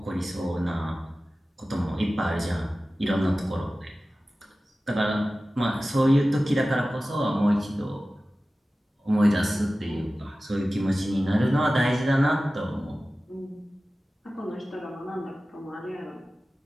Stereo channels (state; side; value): normal; both; correlation 0.96